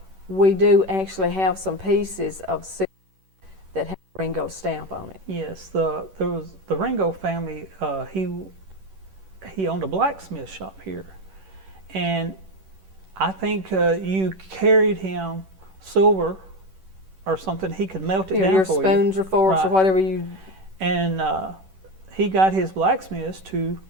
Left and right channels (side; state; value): left; late; 10 ms